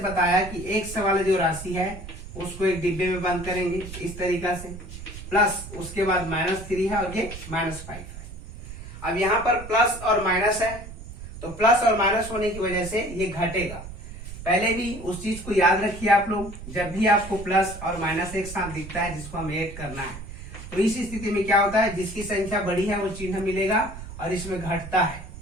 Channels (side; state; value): right; noise; rumble, 12 dB below the sound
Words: बताया कि x वाला जो राशि है उसको एक डिब्बे में बंद करेंगे इस तरीका से, प्लस उसके बाद -3 है और ये -5 है। अब यहाँ पर प्लस और माइनस है, तो प्लस और माइनस होने की वजह से ये घटेगा। पहले भी उस चीज को याद रखिए आप लोग, जब भी आपको प्लस और माइनस एक साथ दिखता है जिसको हमें ऐड करना है, तो इस स्थिति में क्या होता है, जिसकी संख्या बड़ी है वो चिन्ह मिलेगा और इसमें घटता है।